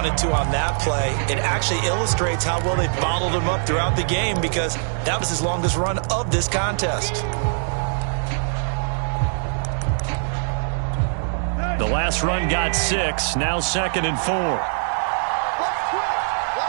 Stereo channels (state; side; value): silent; left; digital silence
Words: to on that play, it actually illustrates how well they bottled him up throughout the game, because that was his longest run of this contest. The last run got 6, now 2nd and 4.